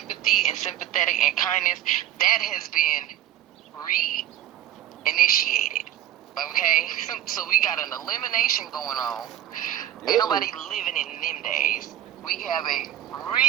and sympathetic and kindness, that has been re-initiated. Okay, so we got an elimination going on. Ain't nobody living in them days. We have a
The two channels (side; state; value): left; quieter; 11.9 dB